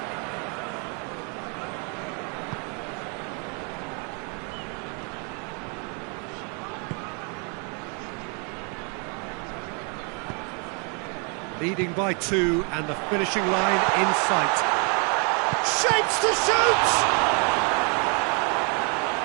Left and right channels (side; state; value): left; quieter; 36.1 dB